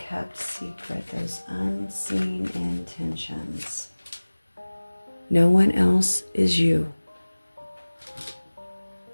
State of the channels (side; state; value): both; inverted; correlation -1.00